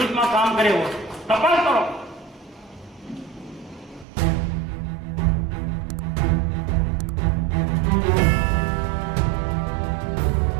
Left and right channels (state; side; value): drops out; left; at 4.0 s